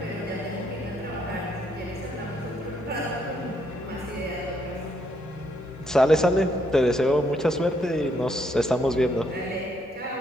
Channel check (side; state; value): both; normal; correlation 0.73